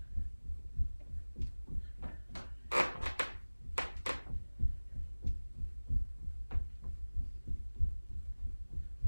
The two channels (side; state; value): both; inverted; correlation -1.00